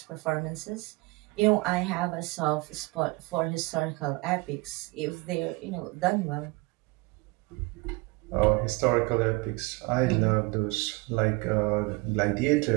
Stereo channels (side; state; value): left; quieter; 25.3 dB